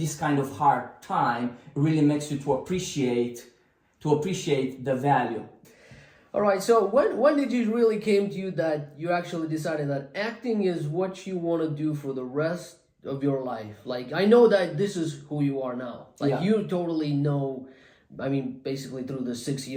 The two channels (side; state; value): both; identical; correlation 1.00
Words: kind of hard time really makes you to appreciate the value. All right. So when did it really came to you that you actually decided that acting is what you want to do for the rest of your life? Like, I know that this is who you are now. Like, you totally know. I mean, basically through the 6